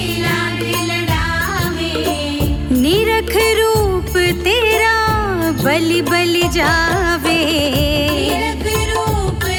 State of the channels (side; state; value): both; identical; correlation 1.00